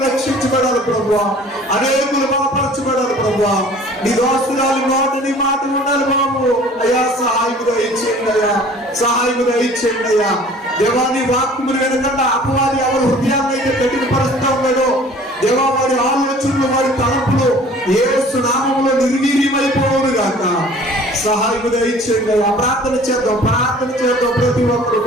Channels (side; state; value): both; normal; correlation 0.49